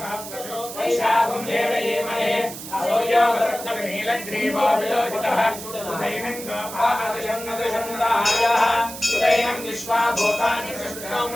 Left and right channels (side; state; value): right; noise; hiss, 11 dB below the sound